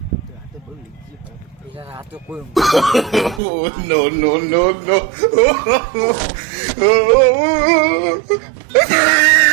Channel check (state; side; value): drops out; left; at 3.4 s